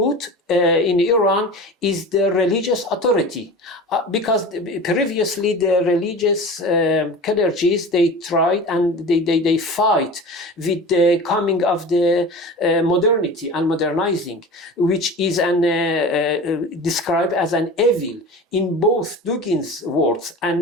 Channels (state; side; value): normal; both; correlation 0.34